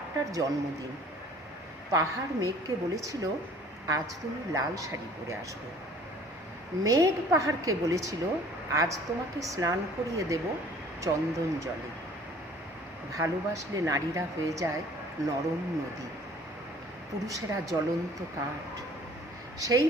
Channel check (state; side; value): normal; both; correlation 0.52